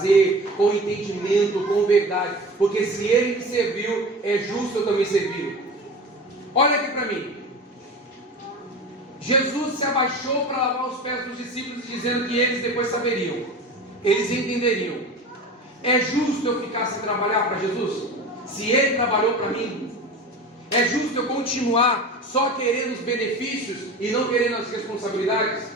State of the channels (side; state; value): both; normal; correlation 0.33